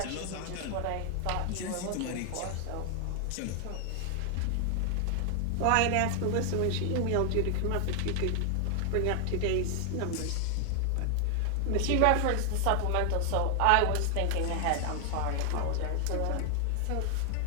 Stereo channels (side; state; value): both; different; correlation 0.00